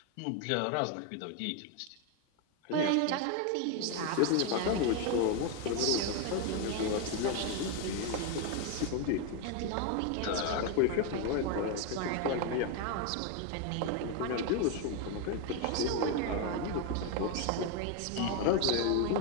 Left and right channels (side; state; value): both; different; correlation 0.01